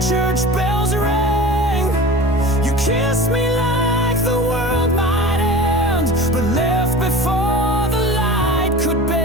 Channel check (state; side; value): normal; both; correlation 0.36